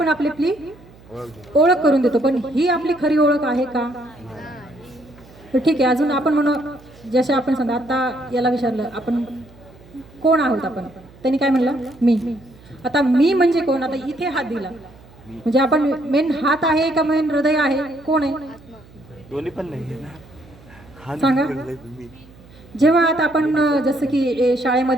आपली ओळख करून देतो. पण ही आपली खरी ओळख आहे का? तर ठीक आहे, अजून आपण म्हणू जसे आपण समजा आता याला विचारलं आपण कोण आहोत आपण, त्यांनी काय म्हणलं? मी. आता मी म्हणजे कोण? आता इथे हात दिला म्हणजे आपण मेन हात आहे का मेन हृदय आहे? कोण आहे? दोन्ही पण नाही सांगा. जेव्हा आता आपण जसं की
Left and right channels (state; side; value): noise; right; hum, 24 dB below the sound